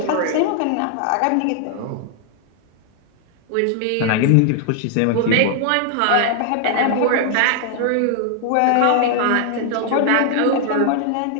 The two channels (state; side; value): different; both; correlation 0.00